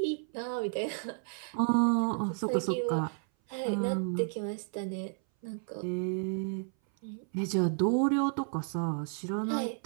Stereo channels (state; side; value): silent; left; 56 dB below the other